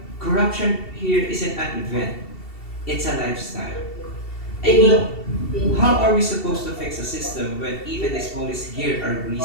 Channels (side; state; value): right; late; 2.7 ms